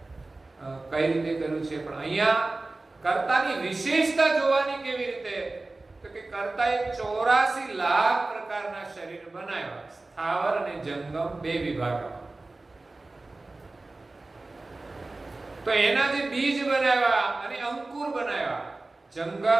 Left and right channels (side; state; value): left; quieter; 3.2 dB